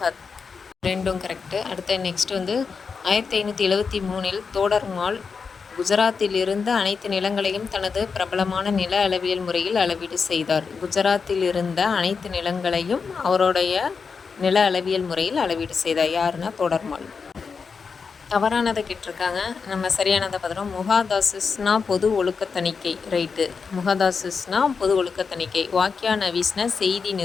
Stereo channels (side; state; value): right; quieter; 5.4 dB